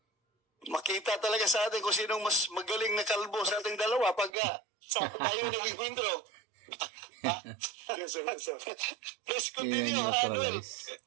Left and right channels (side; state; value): left; drops out; at 4.4 s